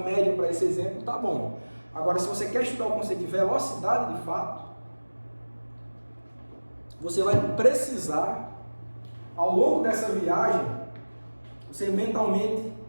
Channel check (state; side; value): inverted; both; correlation -1.00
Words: média para esse exemplo está bom. Agora, se você quer estudar o conceito de velocidade de fato, você vai precisar, ao longo dessa viagem, você mentalmente